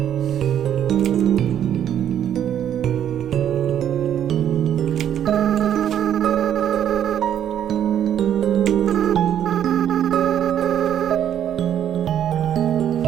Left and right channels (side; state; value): left; quieter; 10.0 dB